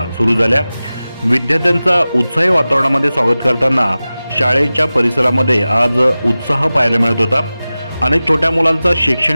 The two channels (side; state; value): both; inverted; correlation -0.96